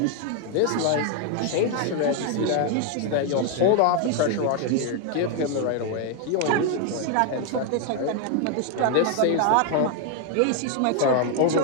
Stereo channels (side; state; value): both; different; correlation 0.01